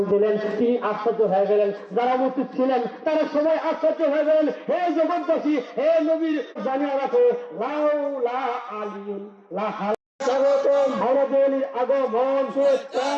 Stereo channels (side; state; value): both; identical; correlation 1.00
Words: দিলেন, তিনি আশ্চর্য হয়ে গেলেন। যারা উপস্থিত ছিলেন তারা সবাই আশ্চর্য হয়ে গেলেন। হে জগৎবাসী, হে নবীর জানিয়ে রাখো, লাউলা আলিউন লাহা স্বাগতম, আমাদের আগমন, শুভেচ্ছা,